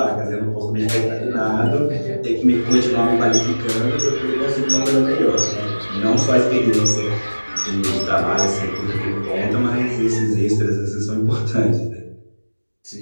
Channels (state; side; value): inverted; both; correlation -1.00